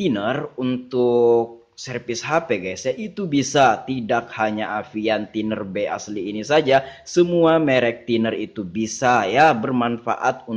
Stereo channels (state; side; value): identical; both; correlation 1.00